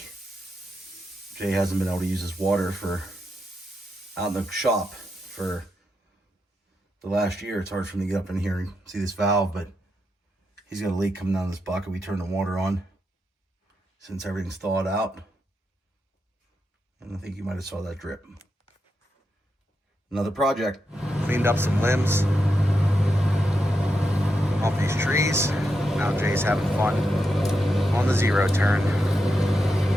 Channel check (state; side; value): normal; both; correlation 0.85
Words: Jay hasn't been able to use his water for out in the shop for the last year. It's hard for him to get up in here and see this valve, but he's got a leak coming down this bucket. We turned the water on since everything's thawed out. And I think you might have saw that drip. Another project. Cleaned up some limbs off these trees. Now Jay's having fun on the zero turn.